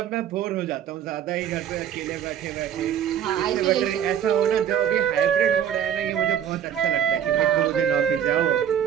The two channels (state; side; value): quieter; left; 9.3 dB